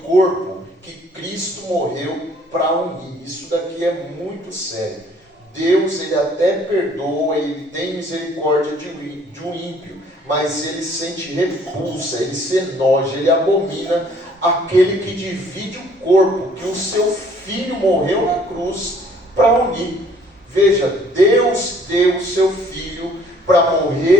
corpo que Cristo morreu para unir. Isso daqui é muito sério. Deus ele até perdoa, ele tem misericórdia de um ímpio, mas ele sente repulsa, ele se enoja, ele abomina aquele que divide o corpo que o seu filho morreu na cruz para unir. Veja, Deus deu o seu filho para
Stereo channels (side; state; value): both; normal; correlation 0.58